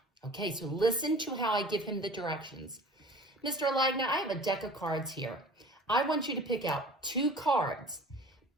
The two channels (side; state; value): both; normal; correlation 0.43